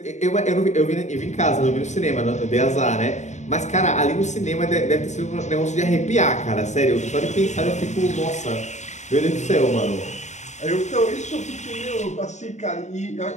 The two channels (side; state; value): right; late; 0.34 ms